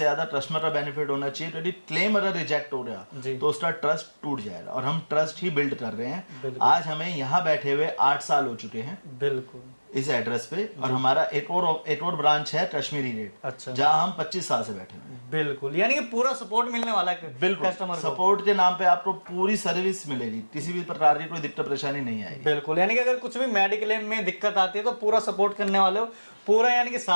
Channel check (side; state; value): both; inverted; correlation -1.00